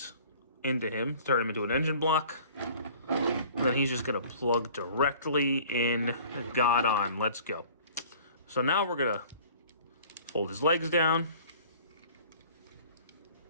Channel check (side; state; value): both; inverted; correlation -0.50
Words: into him, turn him into an engine block. And then he's just going to plug directly in God on. Let's go. So now we're going to fold his legs down,